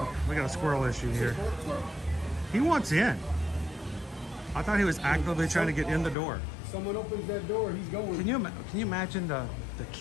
We got a squirrel issue here. He wants in. I thought he was actively trying to get in the door. Someone opens that door, he's going. Can you imagine the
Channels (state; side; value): drops out; right; at 6.2 s